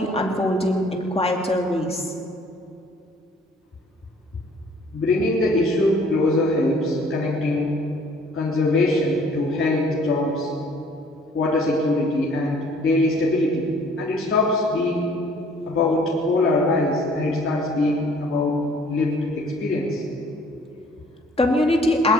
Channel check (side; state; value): both; normal; correlation 0.56